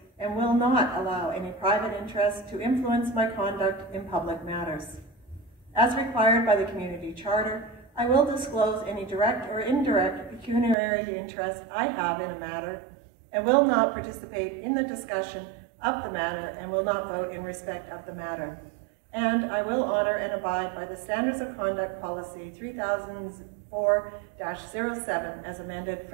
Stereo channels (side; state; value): left; drops out; at 10.8 s